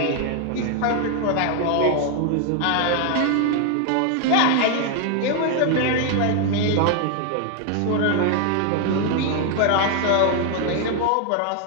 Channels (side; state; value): both; different; correlation 0.00